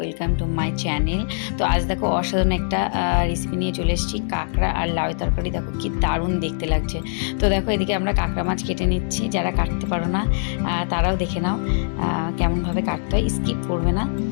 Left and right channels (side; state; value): right; silent; 64 dB below the other